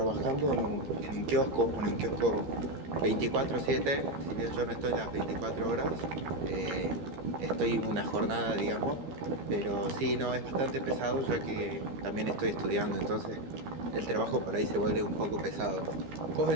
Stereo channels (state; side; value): late; left; 12 ms